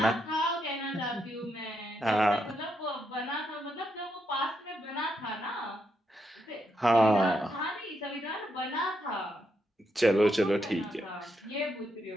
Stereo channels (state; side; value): normal; both; correlation 0.80